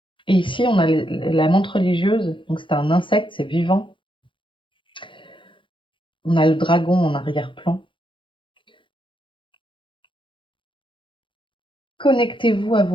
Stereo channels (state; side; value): late; right; 0.24 ms